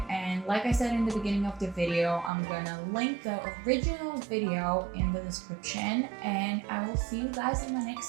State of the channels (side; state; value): left; drops out; at 2.3 s